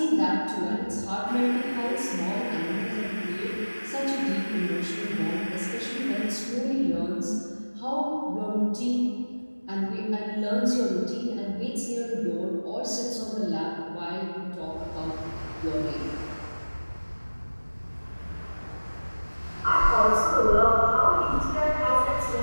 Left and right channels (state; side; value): inverted; both; correlation -1.00